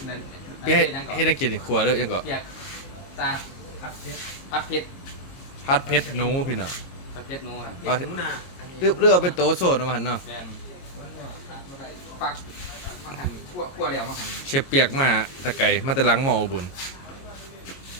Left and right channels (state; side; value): late; right; 22 ms